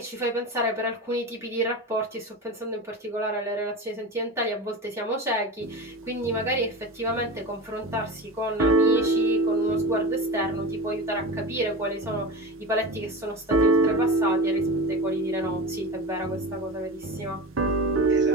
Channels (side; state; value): both; normal; correlation 0.27